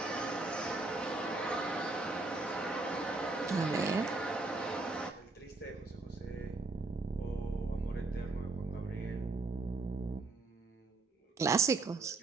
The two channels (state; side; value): quieter; left; 3.4 dB